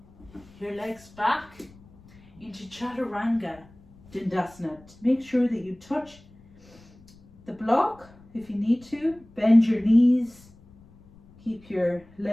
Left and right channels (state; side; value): noise; left; rumble, 25 dB below the sound